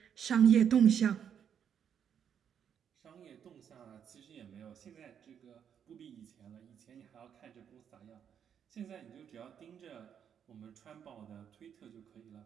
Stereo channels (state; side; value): quieter; left; 8.3 dB